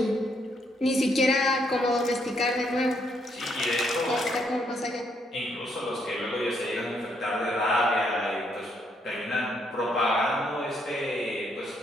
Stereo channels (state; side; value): normal; both; correlation 0.73